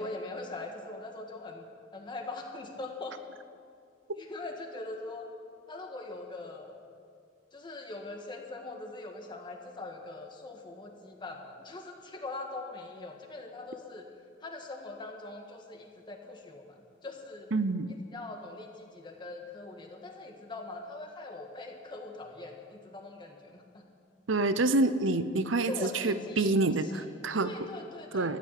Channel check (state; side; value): normal; both; correlation 0.27